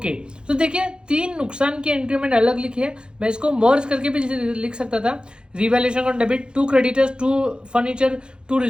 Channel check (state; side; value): late; left; 0.050 ms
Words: तो देखिए, 3 नुकसान की एंट्री मैंने अलग लिखी है, मैं इसको मर्ज करके भी लिख सकता था। Revaluation on debit, 2 creditors, 2 furniture, 2